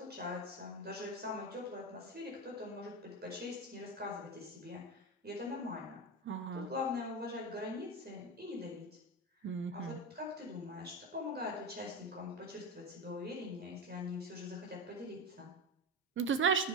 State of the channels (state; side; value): normal; both; correlation 0.18